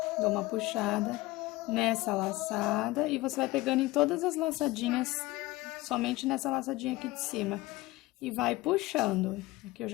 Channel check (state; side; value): quieter; right; 19.7 dB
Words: dou uma puxada nessa laçada e você vai pegando em todas as laçadinhas, somente nessa laçadinha aqui de cima. E vai puxando. Aqui eu